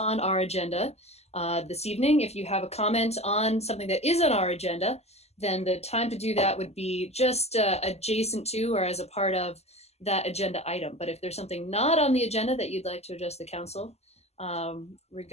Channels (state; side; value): late; right; 0.30 ms